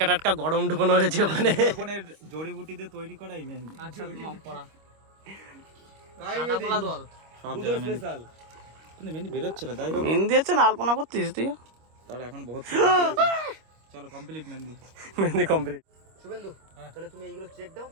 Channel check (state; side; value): late; left; 25 ms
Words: টাটকা গরম ঢুকানো হয়েছে ওখানে। সুন্দরবনের জড়িবুটি দিয়ে তৈরি করা এই মেহেন্দি। আচ্ছা মাম পড়া সব জায়গায় মেহেন্দি। কিন্তু মেহেন্দি বেরোচ্ছে না, যাই হোক মেহেন্দি আছে না আলপনা করছিস তুই? তার এখন বহুত চলো কমপ্লিট মেহেন্দি। মেহেন্দি কমপ্লিট। শুভেন্দু তাহলে তুমি এইগুলো চেক দাও,